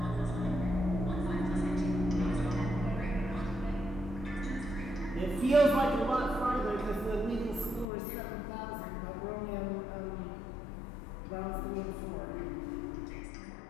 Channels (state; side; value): drops out; right; at 7.9 s